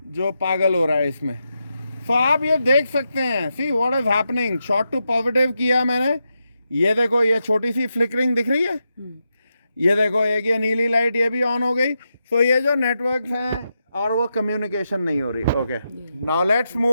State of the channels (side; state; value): both; inverted; correlation -0.86